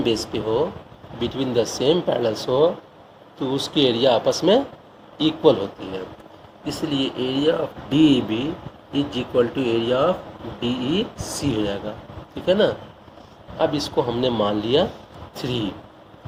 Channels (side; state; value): both; identical; correlation 1.00